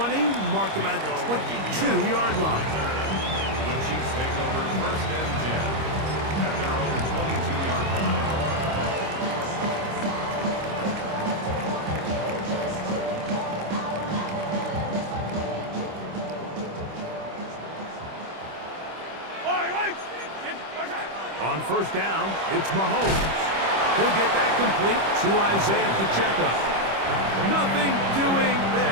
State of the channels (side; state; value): left; late; 25 ms